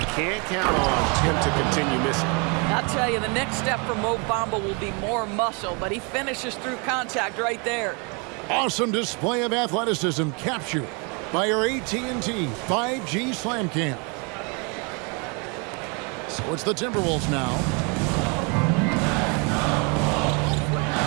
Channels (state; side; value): quieter; left; 32.8 dB